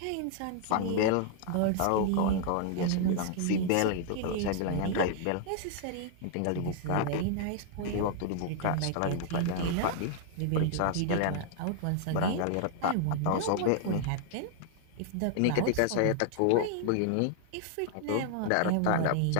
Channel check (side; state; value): both; different; correlation 0.00